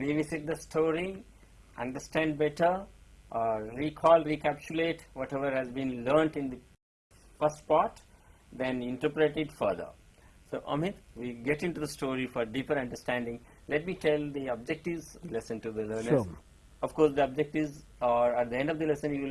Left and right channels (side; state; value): both; identical; correlation 1.00